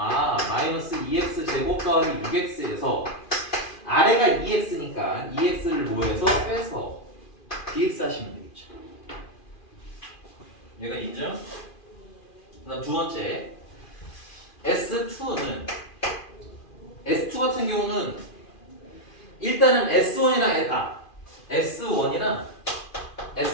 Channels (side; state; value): right; late; 2.4 ms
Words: 마이너스 2x 제곱 더하기 6x에서 아래가 2x니까 2x를 뭐해서 빼서 dx 하시면 되겠죠. 얘가 인정? 그다음 두 번째 S2는 S2 같은 경우는 일단은 S1이나